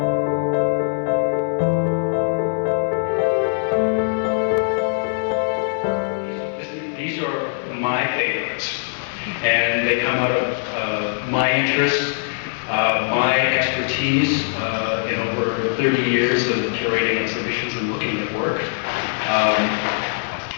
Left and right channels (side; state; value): right; silent; digital silence